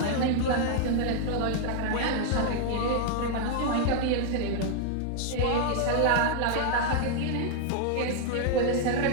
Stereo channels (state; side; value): different; both; correlation 0.00